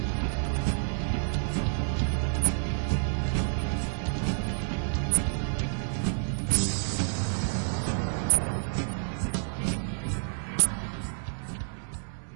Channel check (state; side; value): silent; left; 58 dB below the other